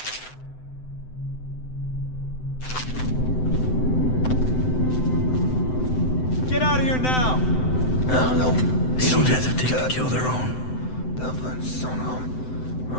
Get out of here now! No, They don't hesitate to kill their own.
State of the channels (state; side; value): late; right; 7.9 ms